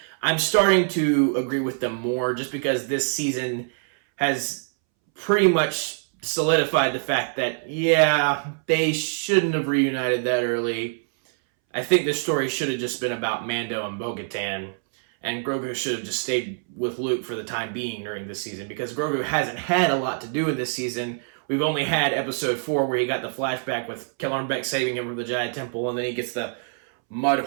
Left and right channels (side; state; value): left; silent; 62 dB below the other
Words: I'm starting to agree with them more just because this season has pretty much solidified the fact that, yeah, they shouldn't have reunited that early. I think this story should have just been about Mando and Bo-Katan, and Grogu should have just stayed with Luke for the time being during this season because Grogu hasn't had a lot to do in this season. We've only had episode 4 where he got the flashback with Kellarn Beck saving him from the Jedi Temple, and then he gets the